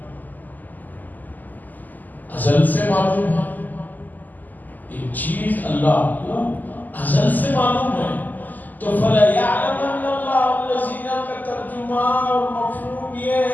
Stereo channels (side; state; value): right; late; 0.084 ms